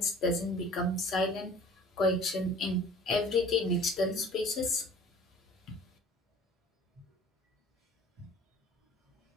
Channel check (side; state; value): both; normal; correlation 0.47